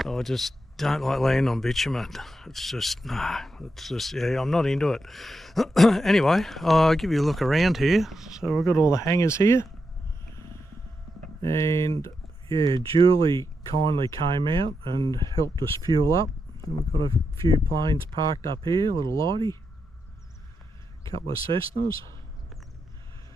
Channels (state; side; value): normal; both; correlation 0.86